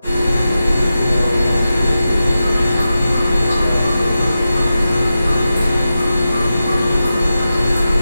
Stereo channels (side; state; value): both; inverted; correlation -0.92